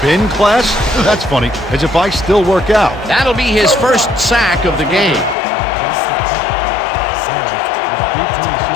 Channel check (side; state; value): right; drops out; at 5.4 s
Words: class? That's funny, as if I still work out. That'll be his first sack of the game. That's the pick. Harris is deep to